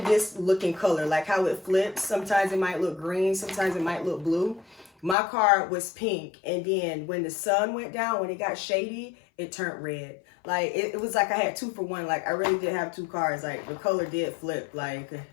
this looking color, like how it flips. Sometimes it might look green, sometimes it might look blue. My car was pink, and then when the sun went down, when it got shady, it turned red. Like, it was like I had 2 for 1. Like, I really did have 2 cars. Like, the color did flip. Like,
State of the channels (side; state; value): right; drops out; at 5.2 s